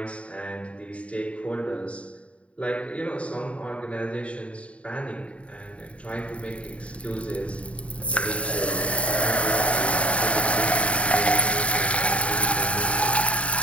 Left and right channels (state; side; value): late; right; 0.063 ms